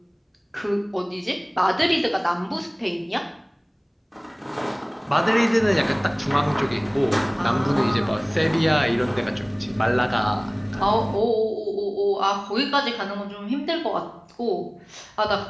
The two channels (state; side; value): identical; both; correlation 1.00